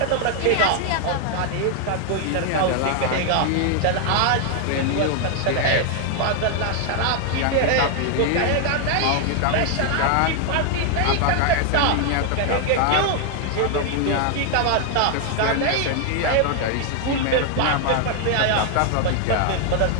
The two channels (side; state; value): both; different; correlation 0.00